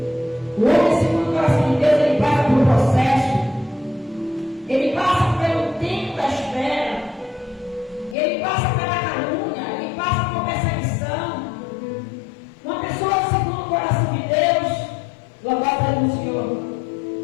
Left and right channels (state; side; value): drops out; right; at 8.2 s